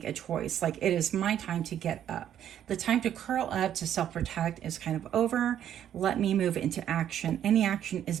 a choice. Like, it is my time to get up. The time to curl up, to self-protect is kind of over. Let me move into action. Any action is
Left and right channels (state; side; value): quieter; left; 10.3 dB